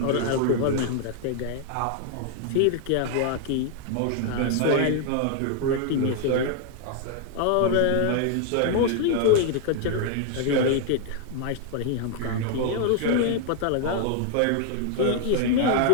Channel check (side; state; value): both; different; correlation 0.00